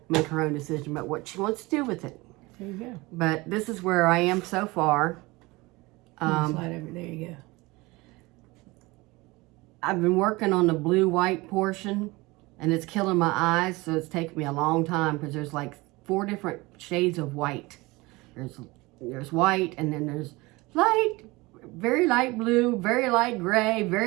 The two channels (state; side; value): quieter; left; 22.5 dB